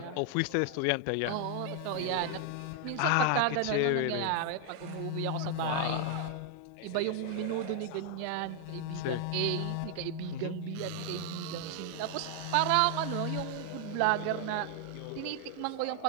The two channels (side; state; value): both; different; correlation 0.00